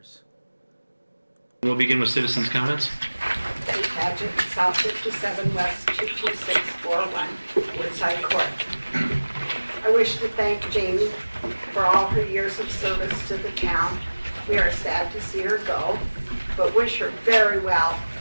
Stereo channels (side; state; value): both; inverted; correlation -1.00